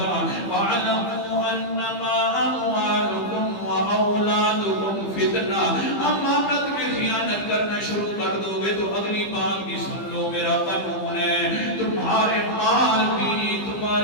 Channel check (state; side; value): late; right; 15 ms